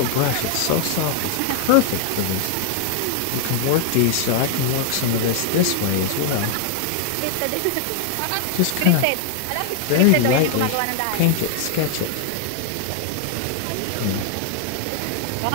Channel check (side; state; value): both; different; correlation 0.00